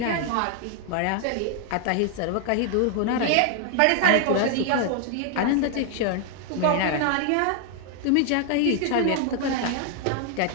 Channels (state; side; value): different; both; correlation 0.00